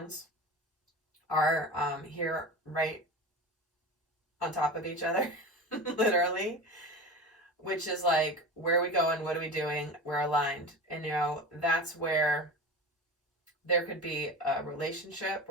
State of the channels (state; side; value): normal; both; correlation 0.30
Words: are here right on top of each other, literally, which is like, where are we going? What are we doing? We're aligned. And, you know, that's where there could be a relationship